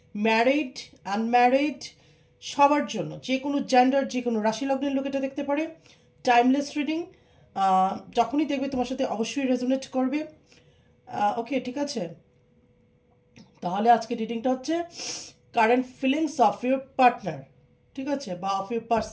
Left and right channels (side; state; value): both; identical; correlation 1.00